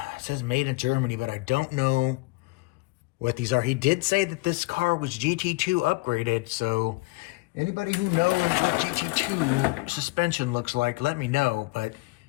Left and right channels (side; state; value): right; quieter; 24.9 dB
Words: it says made in Germany, but I don't know what these are. He did say that this car was GT2 upgraded. So anybody who knows what GT2 suspension looks like, let me know. But